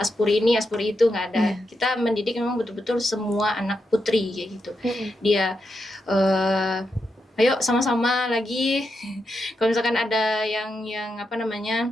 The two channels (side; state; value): both; normal; correlation 0.85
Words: ini, Aspuri itu, nggak ada. Kita mendidik memang betul-betul semua anak putri kayak gitu. Dia ayo sama-sama lagi kalau misalkan ada yang apa